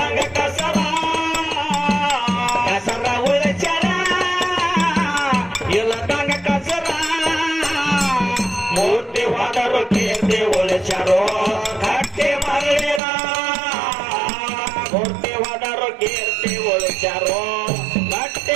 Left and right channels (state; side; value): drops out; left; at 13.0 s